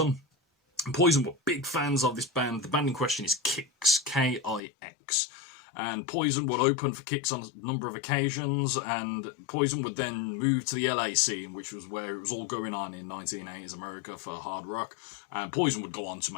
Poison were big fans of this band. The band in question is Kix, K-I-X. And Poison would open for Kix on a number of occasions, and Poison would then move to the LA scene, which was where it was all going on in 1980s America for hard rock, and Poison would go on to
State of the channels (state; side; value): drops out; right; at 4.6 s